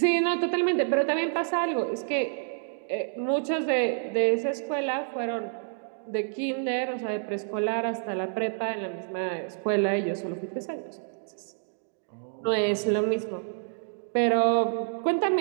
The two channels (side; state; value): left; silent; digital silence